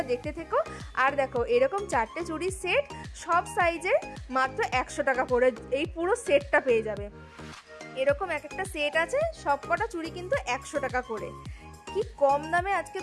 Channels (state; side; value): identical; both; correlation 1.00